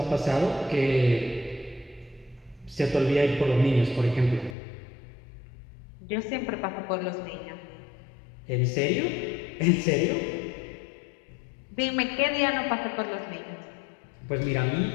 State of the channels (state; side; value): drops out; right; at 4.5 s